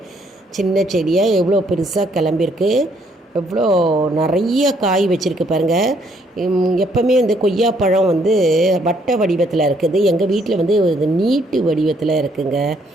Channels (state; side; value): normal; both; correlation 0.68